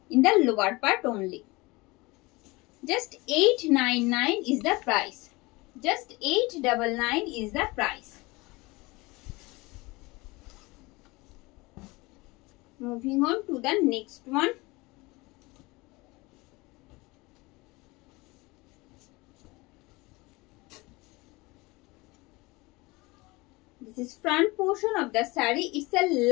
in the lower part only. Just 899 is the price. Just 899 is the price. Moving on to the next one. This is front portion of the saree. It's the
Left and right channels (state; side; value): quieter; right; 23.3 dB